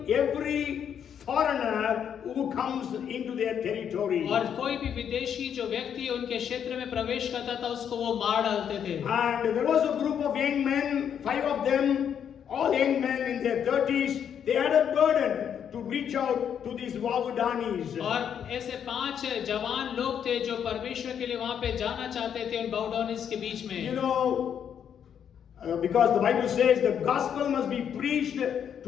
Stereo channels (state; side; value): quieter; right; 8.4 dB